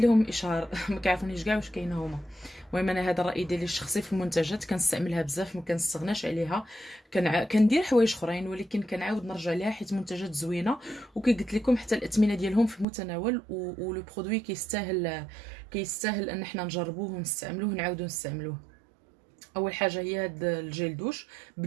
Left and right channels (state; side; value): drops out; left; at 12.9 s